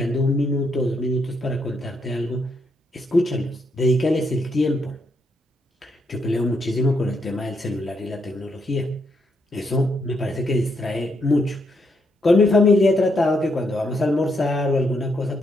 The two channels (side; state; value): both; normal; correlation 0.77